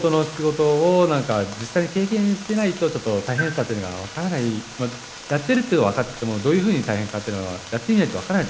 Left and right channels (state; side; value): identical; both; correlation 1.00